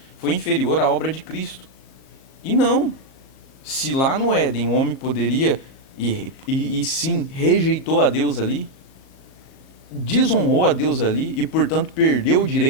foi inferior à obra de Cristo. E não. Se lá no Éden o homem poderia, e sim, rejeitou a Deus ali, desonrou a Deus ali e, portanto, perdeu o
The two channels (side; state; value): right; late; 37 ms